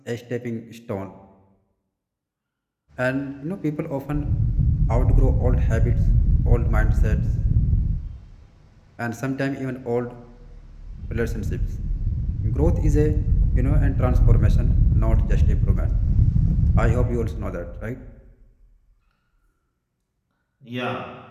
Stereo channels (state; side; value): identical; both; correlation 1.00